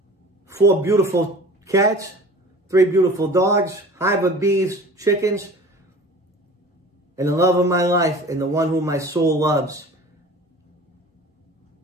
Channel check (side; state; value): both; normal; correlation 0.41